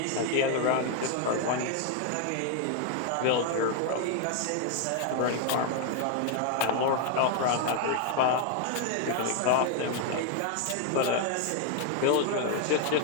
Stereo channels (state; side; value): different; both; correlation 0.00